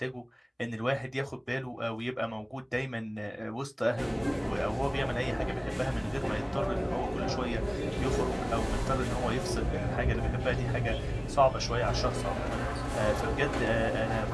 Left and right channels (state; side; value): identical; both; correlation 1.00